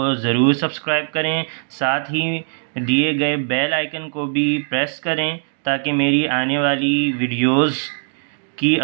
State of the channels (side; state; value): left; silent; digital silence